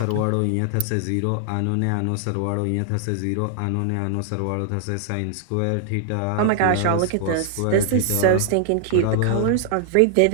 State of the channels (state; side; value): different; both; correlation 0.00